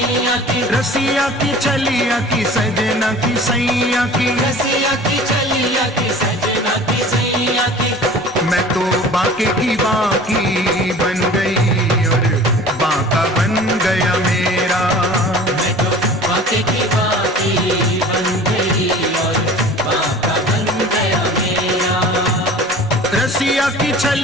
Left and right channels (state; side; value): normal; both; correlation 0.43